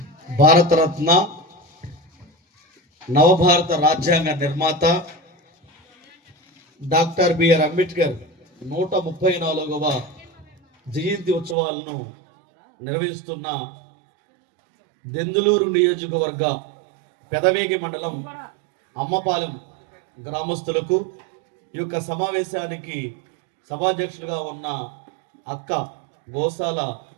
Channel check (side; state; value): left; drops out; at 11.6 s